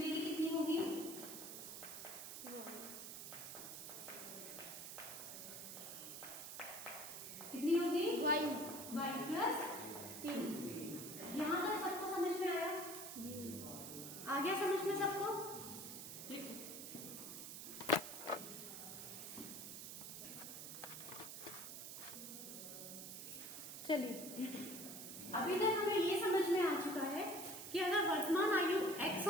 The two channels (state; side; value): noise; right; hiss, 8 dB below the sound